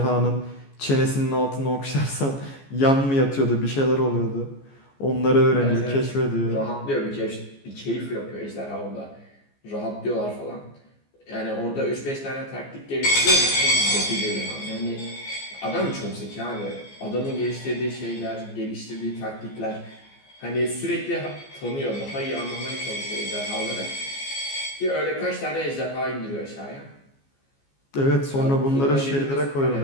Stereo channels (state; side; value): late; right; 15 ms